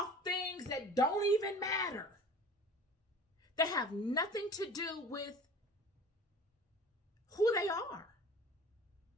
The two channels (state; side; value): normal; both; correlation 0.41